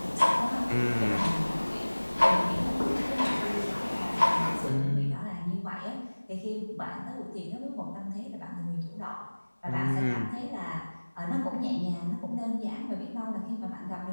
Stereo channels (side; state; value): both; inverted; correlation -1.00